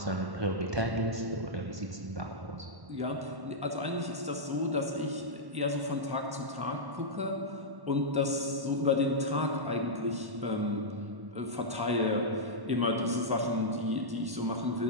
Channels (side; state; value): left; late; 1.1 ms